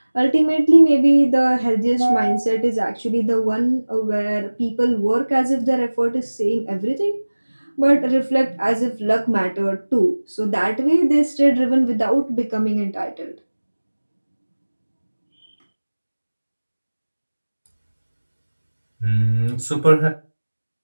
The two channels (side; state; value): both; inverted; correlation -1.00